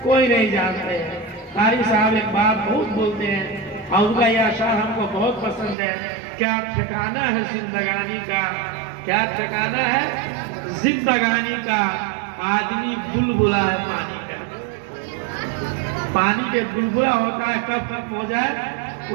کوئی نہیں جانتے ہیں۔ قاری صاحب ایک بات بہت بولتے ہیں اور ان کا یہ اشعار ہم کو بہت پسند ہے، کیا ٹھکانہ ہے زندگانی کا، کیا ٹھکانہ ہے زندگانی کا، آدمی بلبلا ہے پانی کا۔ پانی پہ بلبلا ہوتا ہے، کب ختم ہو جائے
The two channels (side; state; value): left; drops out; at 5.8 s